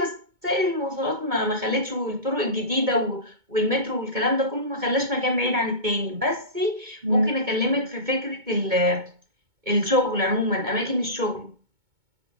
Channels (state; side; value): late; left; 2.2 ms